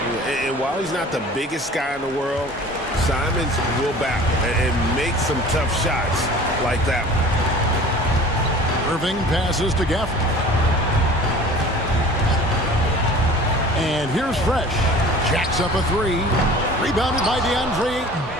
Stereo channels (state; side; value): normal; both; correlation 0.44